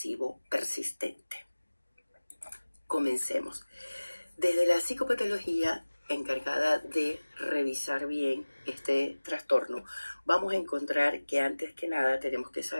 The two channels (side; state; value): both; inverted; correlation -1.00